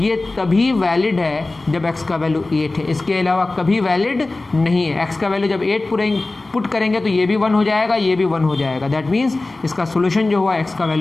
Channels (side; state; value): right; quieter; 3.1 dB